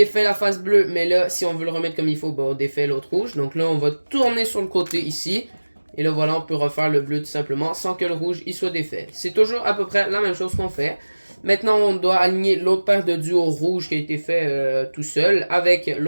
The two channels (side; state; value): both; inverted; correlation -1.00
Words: la face bleue, mais là si on veut le remettre comme il faut, ben, on défait l'autre rouge. Donc là on va tourner sur le côté ici. Et là voilà, on peut refaire le bleu tout simplement sans que le rouge il soit défait. C'est toujours à peu près la même chose qu'on fait. Maintenant on doit aligner l'autre paire de duo rouge qui a été fait tout seul avec